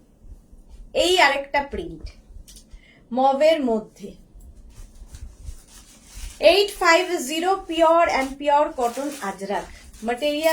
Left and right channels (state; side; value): identical; both; correlation 1.00